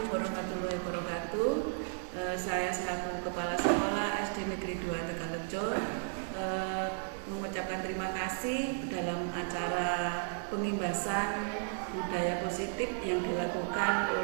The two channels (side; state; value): left; silent; digital silence